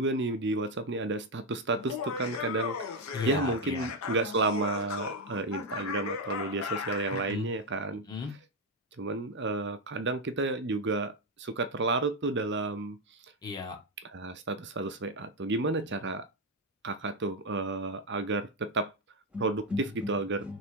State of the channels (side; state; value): both; normal; correlation 0.06